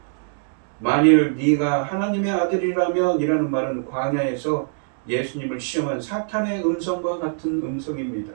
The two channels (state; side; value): silent; left; digital silence